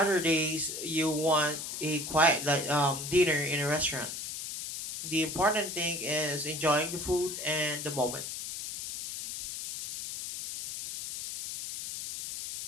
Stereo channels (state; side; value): noise; left; hiss, 6 dB below the sound